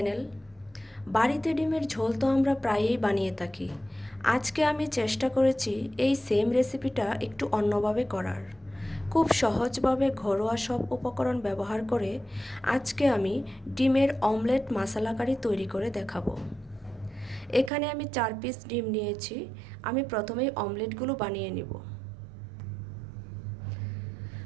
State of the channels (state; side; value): drops out; left; at 17.7 s